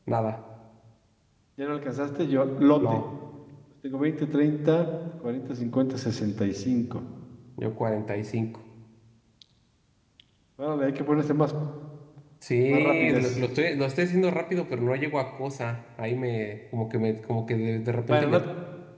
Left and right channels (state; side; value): identical; both; correlation 1.00